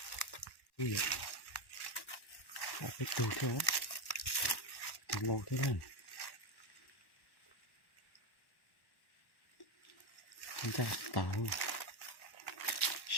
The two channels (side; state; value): right; late; 1.1 ms